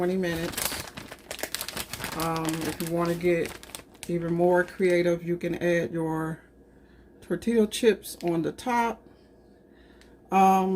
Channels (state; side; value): identical; both; correlation 1.00